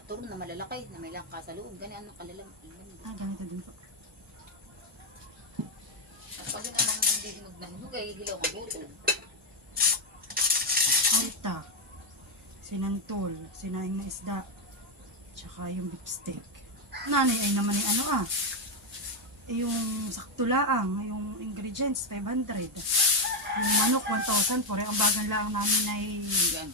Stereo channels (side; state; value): both; normal; correlation 0.04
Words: turon na malalaki na may langka sa loob. Ganyan ang kalalam. Ganito din po. At pag yun ang nandidinog ng hugay, hilaw ang butol. Alta, sinantol, sinaing na isda, tsaka yung beef steak. Nanay ay naman yung ano yung sakto laang, yung ingredients, 500. Yung manok, 1,000. Pore, ang bagal lang namin ay Yan.